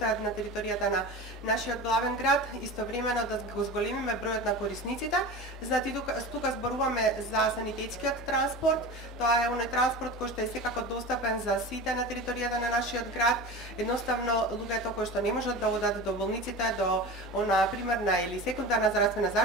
на територијата на нашиот главен град, истовремено да го зголемиме бројот на корисниците. Значи тука зборуваме за санитетскиот транспорт. Тоа е оној транспорт кој што е секако достапен за сите на територијата на нашиот град. Едноставно луѓето кои што не можат да одат до болниците, до она примерна или секундарна здравствена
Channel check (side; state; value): both; normal; correlation 0.31